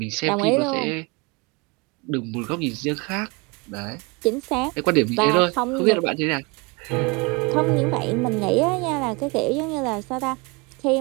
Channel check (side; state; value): left; quieter; 27.9 dB